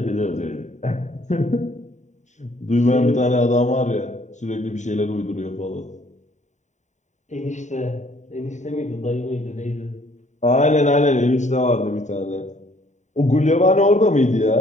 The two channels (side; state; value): right; late; 0.34 ms